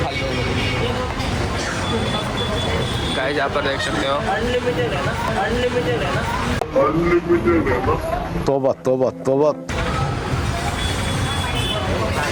गाइस यहाँ पर देख सकते हो. अनलिमिटेड है ना. तोबा तोबा तोबा.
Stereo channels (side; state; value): both; identical; correlation 1.00